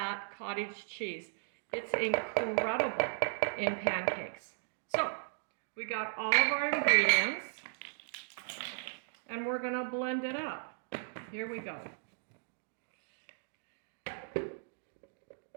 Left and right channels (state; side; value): silent; left; digital silence